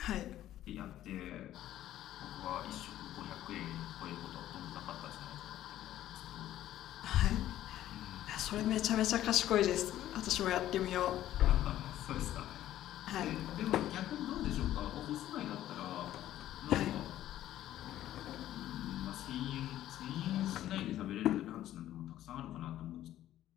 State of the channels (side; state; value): right; quieter; 13.0 dB